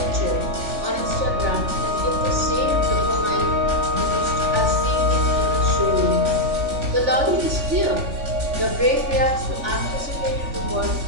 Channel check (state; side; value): late; left; 3.4 ms